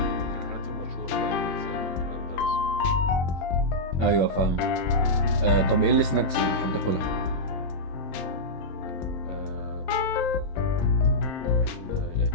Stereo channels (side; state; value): right; late; 23 ms